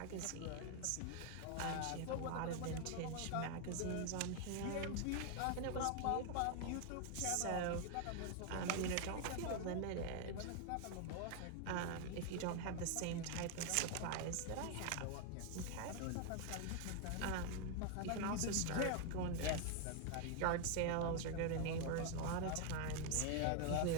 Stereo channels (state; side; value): different; both; correlation 0.00